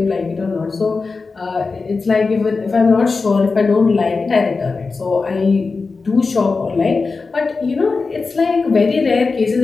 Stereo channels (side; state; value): right; quieter; 4.2 dB